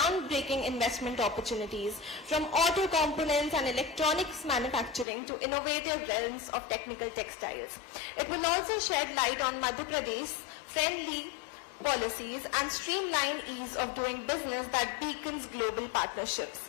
investment opportunities from auto components and electronics manufacturing to innovative realms of technical textiles. It will also shed light on Madhya Pradesh friendly policies and streamline ease of doing business that beacons global partnerships.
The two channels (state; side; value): drops out; right; at 5.1 s